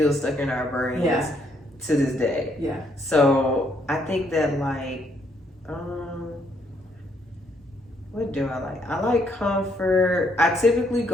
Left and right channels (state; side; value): normal; both; correlation 0.71